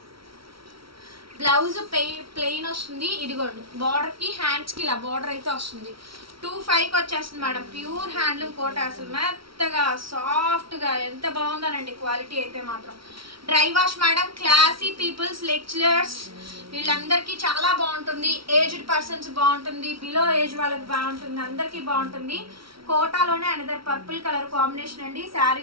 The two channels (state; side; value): late; left; 0.75 ms